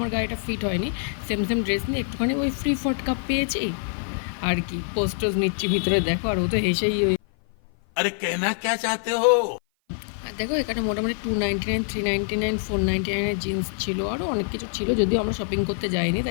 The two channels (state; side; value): silent; right; 55 dB below the other